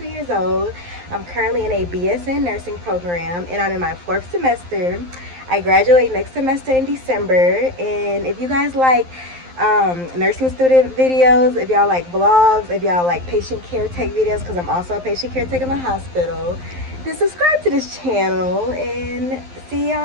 years old. I'm currently in a BSN nursing program and I'm in my 4th semester. I graduate next semester in December, and if you guys like nursing student videos, if y'all like vlogs, if y'all like patient care tech videos, because I'm also a patient care tech in the hospital, then subscribe to this channel and see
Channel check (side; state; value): left; late; 11 ms